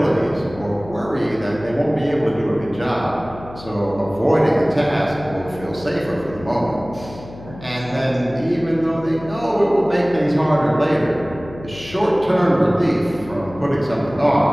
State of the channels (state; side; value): noise; left; hum, 16 dB below the sound